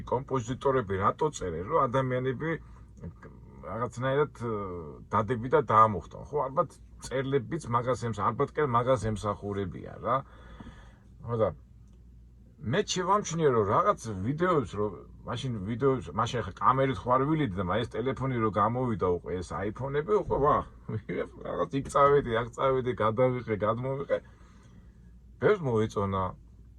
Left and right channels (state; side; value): identical; both; correlation 1.00